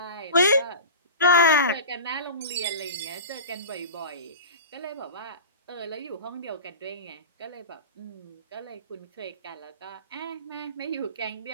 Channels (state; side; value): inverted; both; correlation -0.33